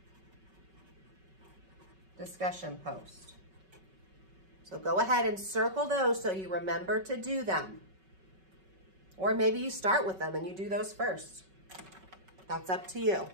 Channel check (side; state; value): left; late; 5.3 ms